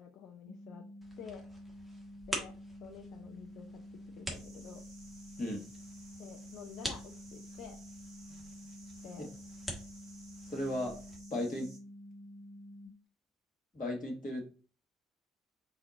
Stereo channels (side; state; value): both; normal; correlation 0.72